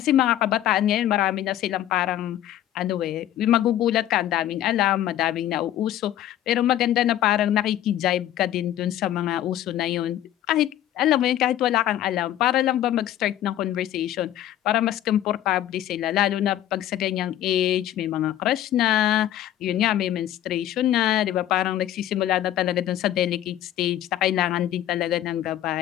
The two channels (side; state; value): right; quieter; 12.4 dB